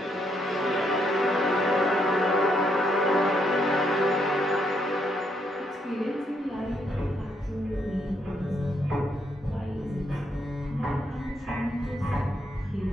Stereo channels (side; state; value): both; normal; correlation 0.75